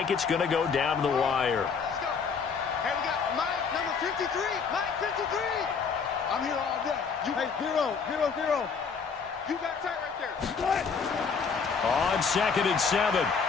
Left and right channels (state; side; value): quieter; right; 5.7 dB